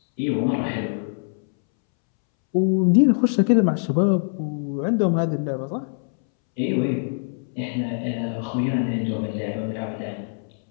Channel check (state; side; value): silent; right; 63 dB below the other